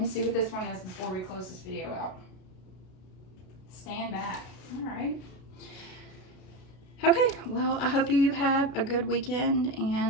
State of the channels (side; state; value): right; late; 33 ms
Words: see what this one is before we close this video out. Stand back. All right. Okay, well, I hope you have a good weekend,